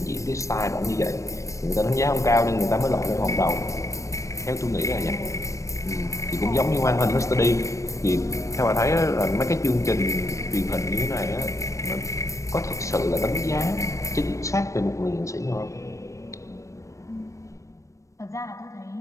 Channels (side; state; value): right; late; 0.15 ms